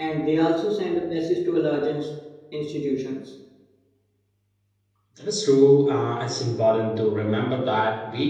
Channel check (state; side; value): identical; both; correlation 1.00